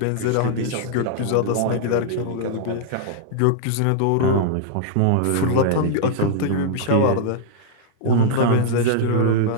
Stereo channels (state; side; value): different; both; correlation -0.01